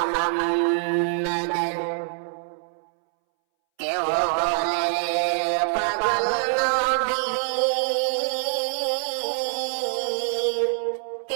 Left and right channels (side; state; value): left; silent; 62 dB below the other